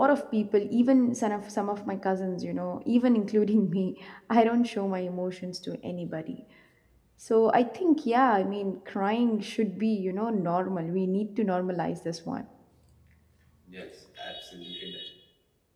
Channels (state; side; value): identical; both; correlation 1.00